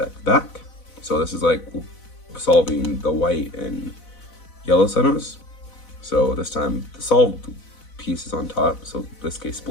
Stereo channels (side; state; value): right; late; 4.0 ms